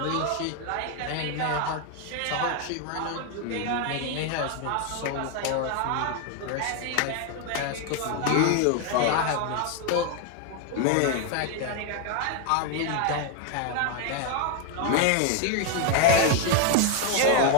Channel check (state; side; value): different; both; correlation 0.01